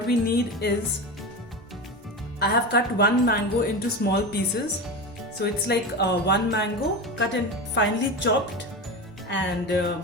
we need is, I have cut one mango into small pieces. So it's like one mango cut and finely chopped, and a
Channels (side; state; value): both; normal; correlation 0.23